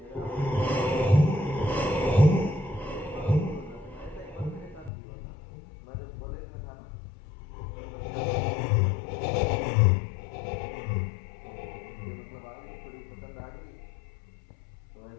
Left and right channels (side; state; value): right; drops out; at 4.9 s